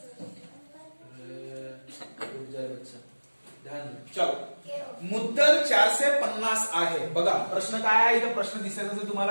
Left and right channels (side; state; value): both; inverted; correlation -1.00